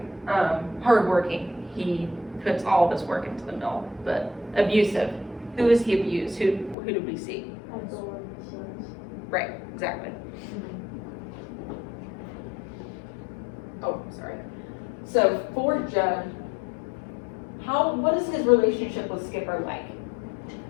Hardworking. He puts all of his work into the mill. But abusive. Who is he abused? Who do we see? Ethel and the sons. Right, exactly. Oh, sorry. So for Judd, what is his relationship with Skipper like?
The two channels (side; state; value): right; drops out; at 6.8 s